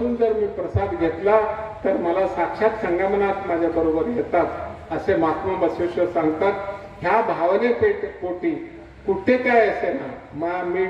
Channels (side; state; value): both; identical; correlation 1.00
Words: जर मी प्रसाद घेतला तर मला साक्षात संगमनात माझ्या बरोबर येतात असे महात्मा बसवेश्वर सांगतात. ह्या भावने पोटी कुठे काय असे ना, मी